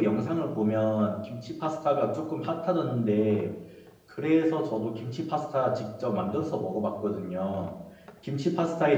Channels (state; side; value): identical; both; correlation 1.00